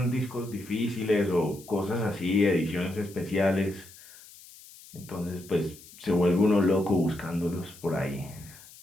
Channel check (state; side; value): noise; left; hiss, 20 dB below the sound